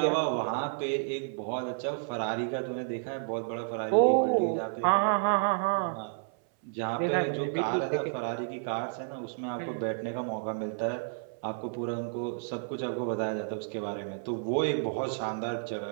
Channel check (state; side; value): silent; left; 57 dB below the other